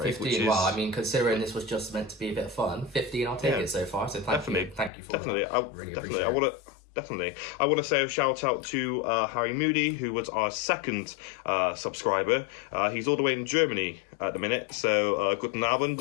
15, which is... well, I mean, considering this was just meant to be a bit of fun, 15, I'll take it so far, so thank you for that. Really appreciate it. Definitely. I want to say a shout out to Harry Moody, who was our second subscriber. He's all the way in Germany at the minute. So, guten Abend,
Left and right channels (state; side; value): drops out; right; at 4.9 s